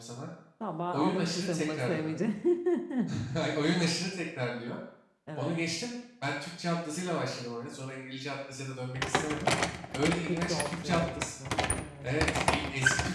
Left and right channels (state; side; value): identical; both; correlation 1.00